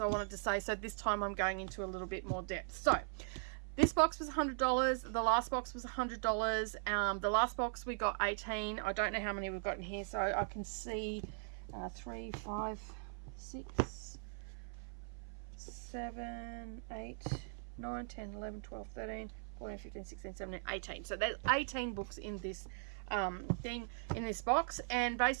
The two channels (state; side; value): silent; left; 51 dB below the other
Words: wanted to say. So this time I'm going into a little bit more depth. So this box was $100. The last box was $100. The last box we got 18. I don't know how many we've got in here, so I can see 3, 5, 6, 7, 8, 9, 10, 11, 12, 13, 14, 15, 16, 17, 18. So there's 18 books in this thing, in this box, and